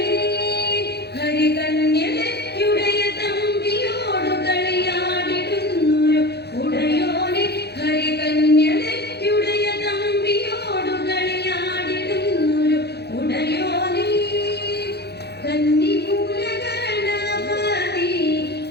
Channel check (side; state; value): right; late; 0.48 ms